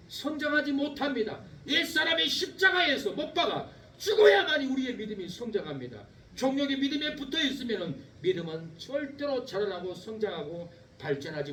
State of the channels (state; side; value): identical; both; correlation 1.00